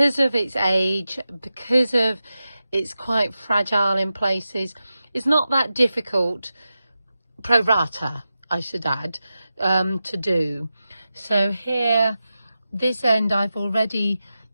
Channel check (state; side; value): inverted; both; correlation -0.92